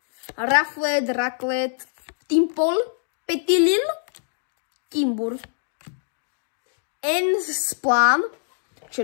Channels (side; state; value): right; silent; digital silence